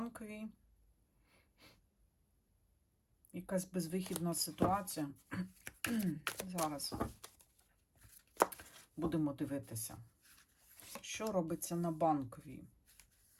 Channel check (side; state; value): both; identical; correlation 1.00